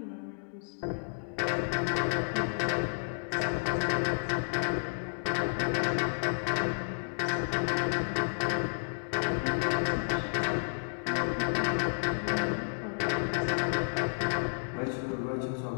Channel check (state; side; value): silent; right; digital silence